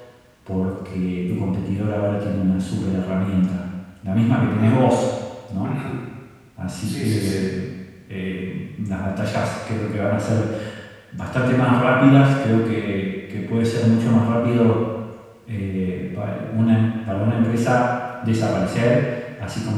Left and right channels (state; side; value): identical; both; correlation 1.00